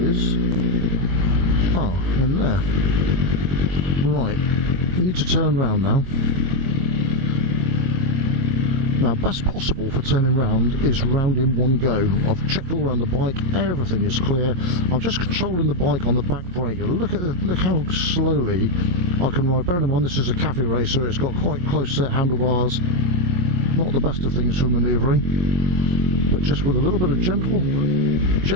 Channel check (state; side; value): late; left; 22 ms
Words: in there. Right, you need to turn round now. Now, best possible for turning round is round in one go. I've checked all around the bike, everything is clear. I'm just controlling the bike on the back brake. Look how slowly I can ride. Bearing in mind this is a cafe racer, it's got quite close set handlebars. Not the best of things for manoeuvring, but just with a little bit of